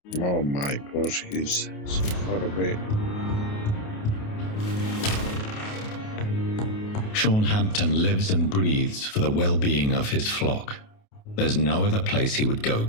Oh my gosh, he's so far away. Sean Hampton lives and breathes for the well-being of his flock. There's no other place he would go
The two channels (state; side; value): late; right; 28 ms